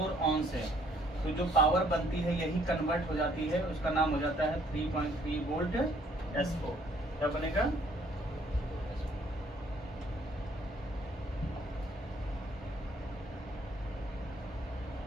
ऑन से। तो जो पावर बनती है यही कन्वर्ट हो जाती है, उसका नाम हो जाता है 3.3 वोल्ट S4। क्या बनेगा?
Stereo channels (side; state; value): both; normal; correlation 0.63